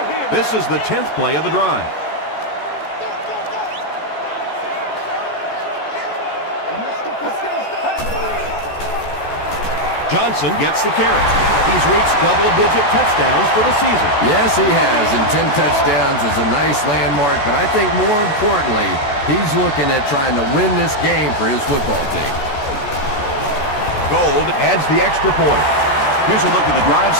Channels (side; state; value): right; late; 14 ms